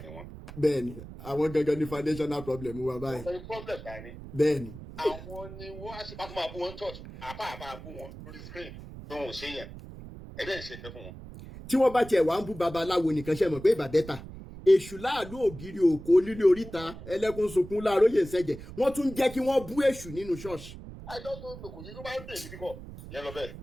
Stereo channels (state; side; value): noise; right; rumble, 14 dB below the sound